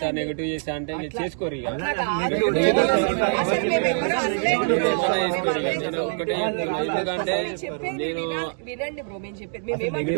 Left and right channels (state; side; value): silent; left; digital silence